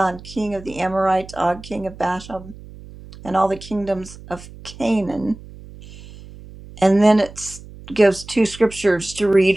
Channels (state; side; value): noise; right; hum, 18 dB below the sound